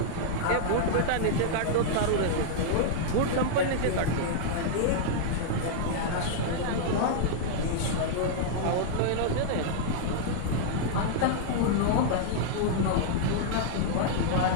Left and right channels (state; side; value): different; both; correlation -0.01